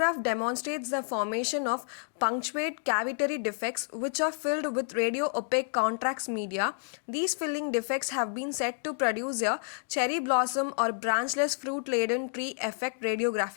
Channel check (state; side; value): silent; right; digital silence